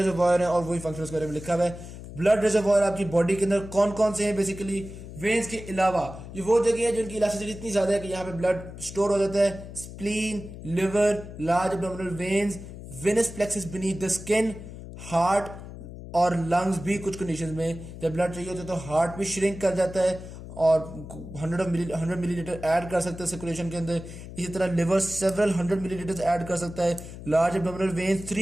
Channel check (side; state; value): left; noise; hum, 13 dB below the sound